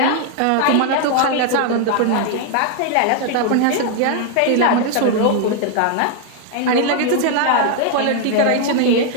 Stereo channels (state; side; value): different; both; correlation 0.00